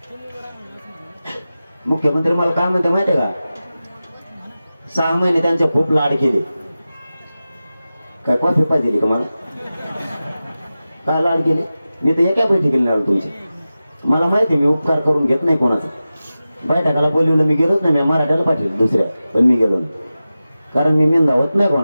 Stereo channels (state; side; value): inverted; both; correlation -0.94